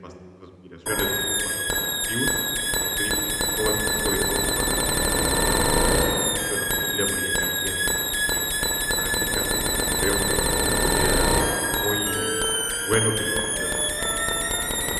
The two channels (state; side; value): identical; both; correlation 1.00